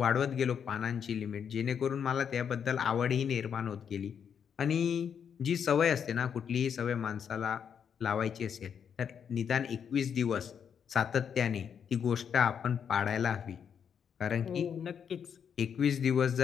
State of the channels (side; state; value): right; quieter; 7.6 dB